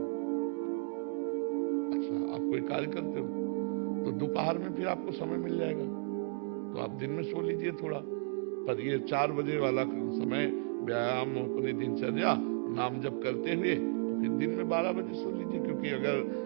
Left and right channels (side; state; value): left; silent; 55 dB below the other